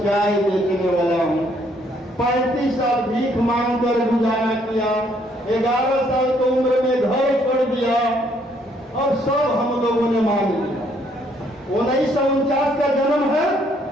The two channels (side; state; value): both; normal; correlation 0.67